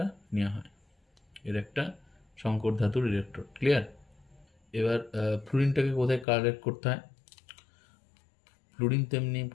নেওয়া হয়, এর একটা সংকর ধাতুর ইলেকট্রোড। ক্লিয়ার? এবার ফ্লুরিনটাকে কোথায় কালেক্ট করতে হয়, ফ্লুরিন তেমনি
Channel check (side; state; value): right; drops out; at 6.2 s